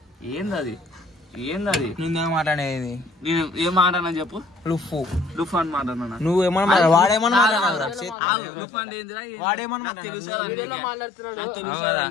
ఏందది మాట్లాడేది నేను ఏం మాట్లాడినా చెప్పు. లుఫ్ అని మాట్లాడినా నువ్వేమన్నా వాడేమన్నా లుఫ్ అంటే ఏందిరా?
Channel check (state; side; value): drops out; right; at 8.2 s